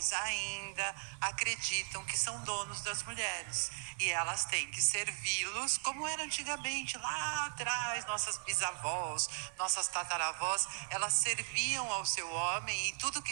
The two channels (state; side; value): silent; left; 53 dB below the other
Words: ainda acreditam que são donos das mulheres e elas têm que servi-los como era antigamente, lá atrás, nossas bisavós, nossas tataravós, elas serviam ao seu homem e tudo que